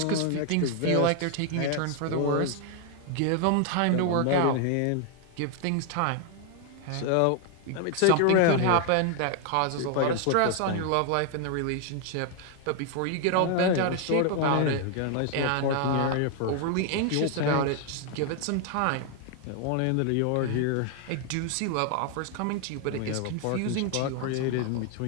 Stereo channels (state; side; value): different; both; correlation 0.00